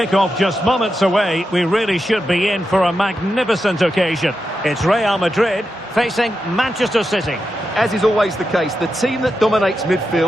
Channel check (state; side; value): normal; both; correlation 0.88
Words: just moments away, we really should be in for a magnificent occasion. It's Real Madrid facing Manchester City. As is always the case, the team that dominates